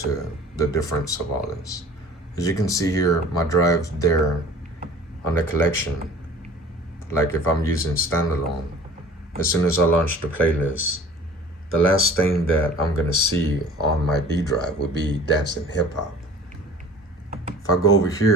the difference of all this. As you can see here, my drive there on the collection, like if I'm using standalone, as soon as I launch the playlist, the last thing that I'm gonna see on my D drive would be dancing hip hop. If I go over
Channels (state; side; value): normal; both; correlation 0.46